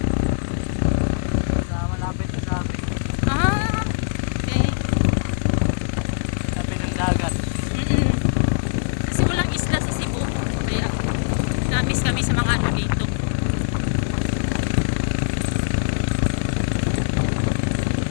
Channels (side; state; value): right; silent; 64 dB below the other